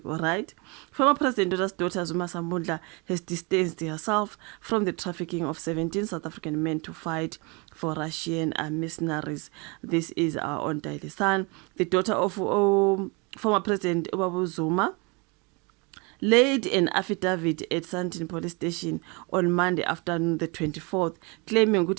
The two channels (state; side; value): quieter; left; 29.9 dB